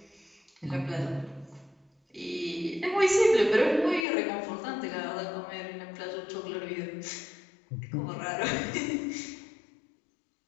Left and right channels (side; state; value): right; drops out; at 4.0 s